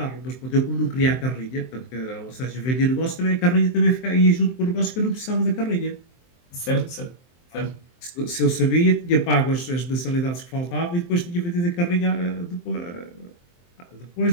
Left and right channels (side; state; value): right; late; 23 ms